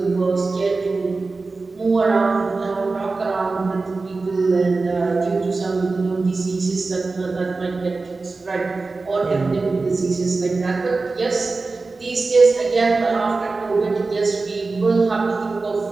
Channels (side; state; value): left; quieter; 3.8 dB